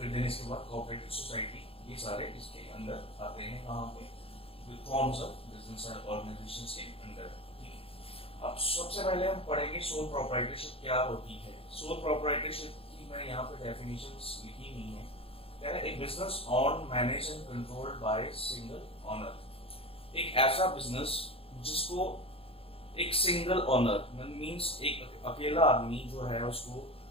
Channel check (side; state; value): right; late; 0.27 ms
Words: देन इसके बाद कोऑपरेटिव सोसाइटी, ये सारे इसके अंदर आते हैं कहाँ पे, फॉर्म्स ऑफ बिजनेस ऑर्गेनाइजेशंस के अंदर। ठीक है, अब सबसे पहले हम पढ़ेंगे सोल प्रोप्राइटरशिप क्या होती है। सोल प्रोप्राइटरशिप की मैंने यहाँ पे डेफिनेशंस लिखी हुई है। कह रहा है एक business on manage and controlled by single owner. एक ऐसा बिजनेस जिसको एक सिंगल ओनर मींस एक अकेला आदमी जो है उसको